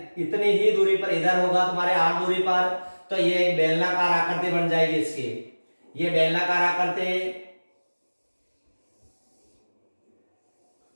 इतनी ही दूरी पर इधर होगा तुम्हारे R दूरी पर। तो ये एक बेलनाकार आकृति बन जाएगी इसकी। ये बेलनाकार आकृति,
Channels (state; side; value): inverted; both; correlation -1.00